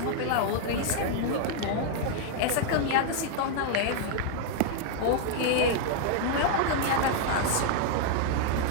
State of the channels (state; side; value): different; both; correlation 0.00